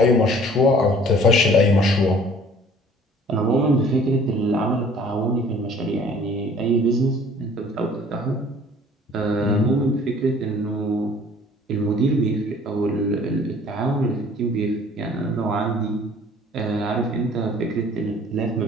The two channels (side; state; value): both; normal; correlation 0.52